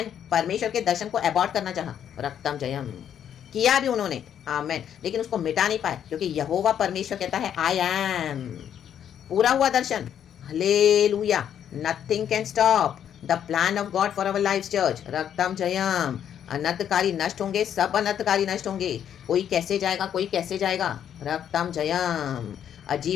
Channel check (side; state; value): right; quieter; 9.4 dB